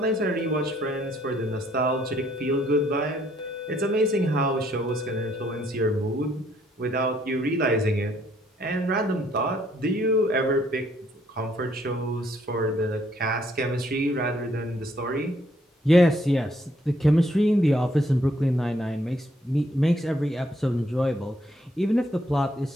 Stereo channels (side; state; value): both; normal; correlation 0.68